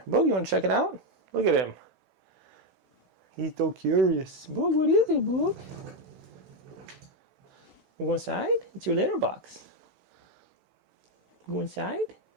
Boogie, you want to check it out? Look at him. He's so curious. Boog, what is it, Boog? You go inside? It's your litter box. You go inside?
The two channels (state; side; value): normal; both; correlation 0.06